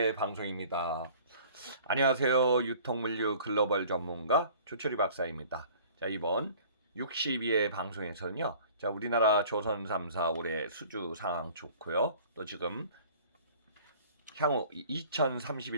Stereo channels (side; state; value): both; inverted; correlation -0.49